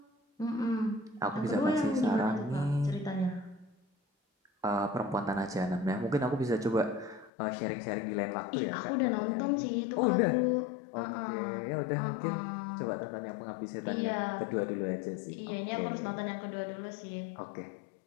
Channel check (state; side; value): drops out; right; at 7.3 s